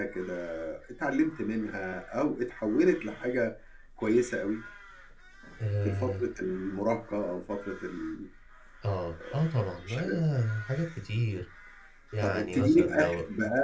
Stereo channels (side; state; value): both; identical; correlation 1.00